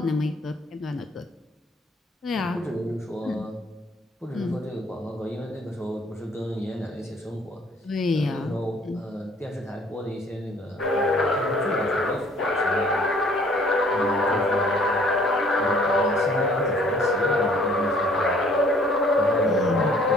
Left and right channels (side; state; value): both; normal; correlation 0.58